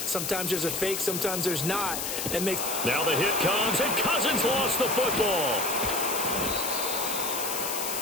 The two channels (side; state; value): left; noise; hiss, 3 dB below the sound